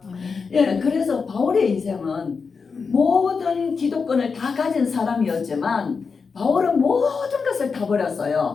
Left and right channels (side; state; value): right; quieter; 5.2 dB